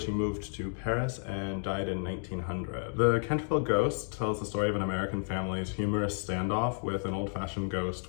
he moved to Paris and died in 1900. The Canterville Ghost tells the story of an American family's humorous standoff with an old-fashioned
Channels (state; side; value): silent; right; 57 dB below the other